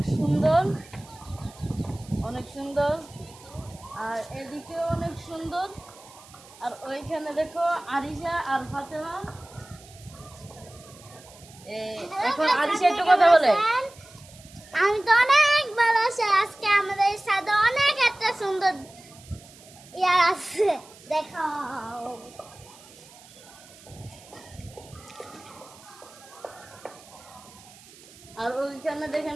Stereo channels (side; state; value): right; noise; hiss, 22 dB below the sound